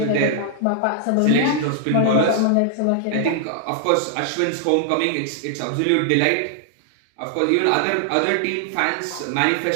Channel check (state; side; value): different; both; correlation -0.01